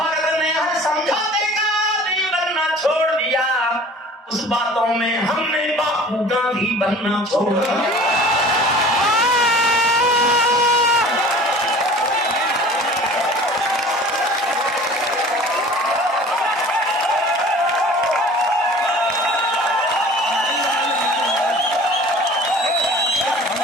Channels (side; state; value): both; normal; correlation 0.45